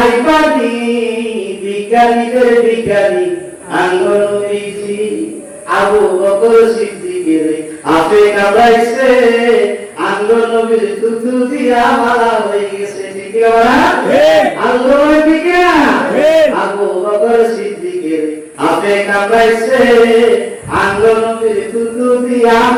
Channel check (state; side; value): identical; both; correlation 1.00